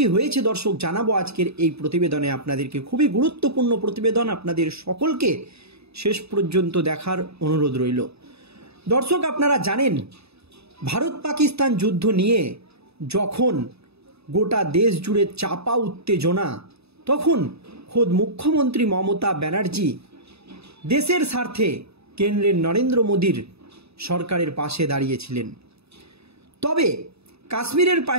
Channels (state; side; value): late; left; 0.79 ms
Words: হয়েছে দর্শক জানাবো আজকের এই প্রতিবেদনে আপনাদেরকে। খুবই গুরুত্বপূর্ণ প্রতিবেদন, আপনাদের সকলকে শেষ পর্যন্ত দেখার অনুরোধ রইল। দর্শক, আপনারা জানেন ভারত পাকিস্তান যুদ্ধ নিয়ে যখন গোটা দেশ জুড়ে চাপা উত্তেজনা, তখন খোদ মুখ্যমন্ত্রী মমতা ব্যানার্জি দেশের স্বার্থে কেন্দ্রের নরেন্দ্র মোদীর সরকারের পাশে দাঁড়িয়েছিলেন। তবে কাশ্মীরের